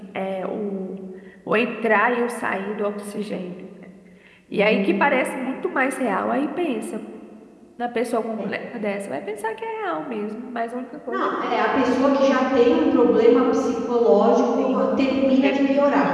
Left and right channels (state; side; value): identical; both; correlation 1.00